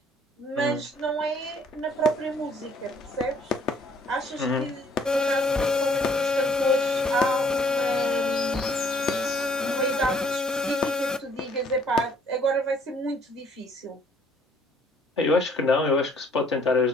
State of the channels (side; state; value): both; normal; correlation 0.62